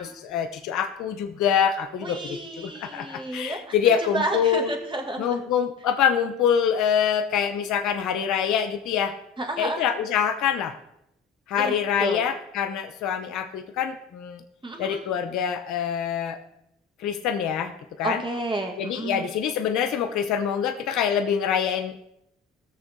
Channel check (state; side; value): quieter; right; 6.6 dB